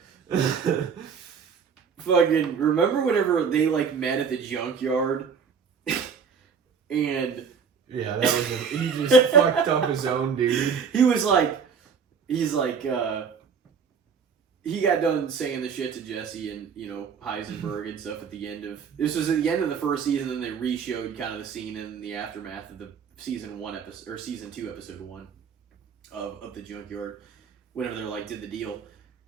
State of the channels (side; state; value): left; quieter; 6.2 dB